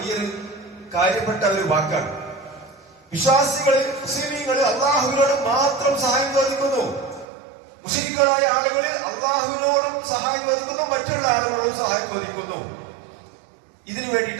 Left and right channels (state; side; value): drops out; left; at 7.2 s